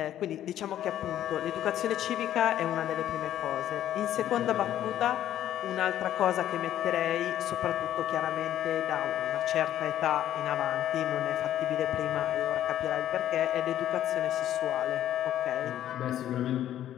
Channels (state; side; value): quieter; right; 11.8 dB